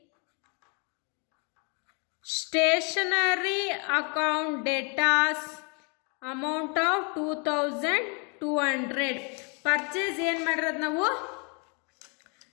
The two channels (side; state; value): right; quieter; 34.6 dB